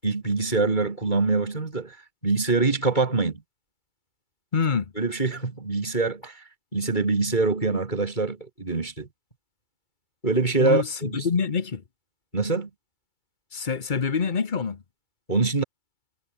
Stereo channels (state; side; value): late; right; 2.3 ms